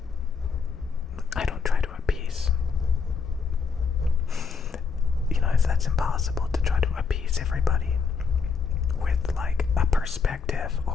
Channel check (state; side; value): quieter; right; 5.4 dB